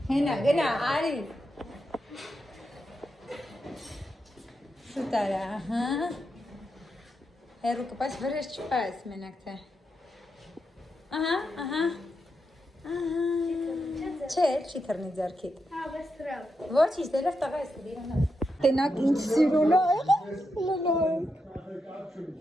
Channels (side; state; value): both; normal; correlation 0.85